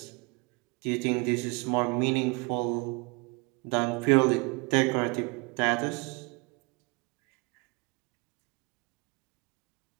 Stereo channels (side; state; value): left; quieter; 29.0 dB